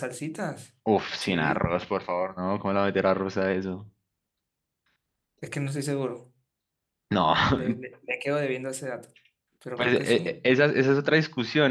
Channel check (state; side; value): identical; both; correlation 1.00